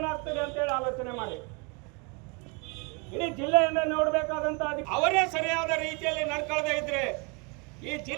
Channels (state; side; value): quieter; left; 32.2 dB